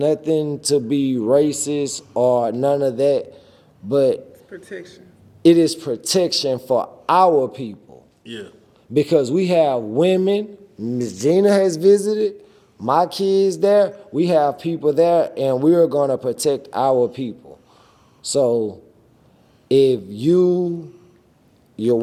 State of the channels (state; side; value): identical; both; correlation 1.00